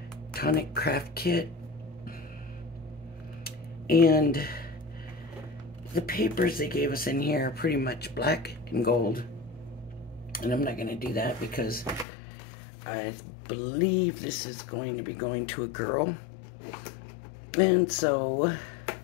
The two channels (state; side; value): drops out; right; at 12.1 s